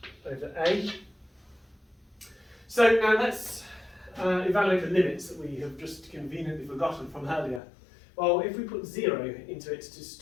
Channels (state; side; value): drops out; right; at 7.6 s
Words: over a. So now let's evaluate the limits that we have just conveniently forgotten from earlier. Well, if we put 0 into it to